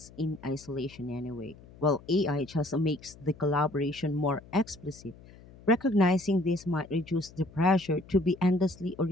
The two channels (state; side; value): noise; left; hum, 21 dB below the sound